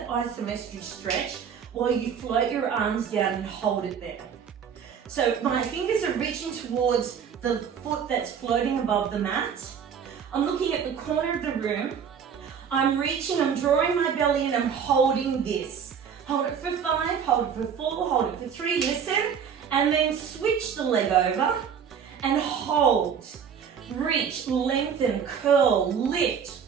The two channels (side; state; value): left; quieter; 7.4 dB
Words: isometric stretch while you float your arms down and hold it there. So my fingers are reaching towards the foot that's floating above the mat. I'm looking at the corner of the room. I'm reaching, I'm drawing my belly in, I'm holding this. Hold it for 5, hold it for 4, hold it for 3, listen, and then switch the leg over and hold. Reach, lengthen, curl, lift.